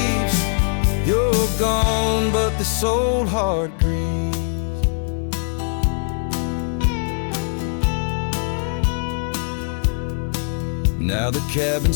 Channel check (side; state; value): right; silent; 63 dB below the other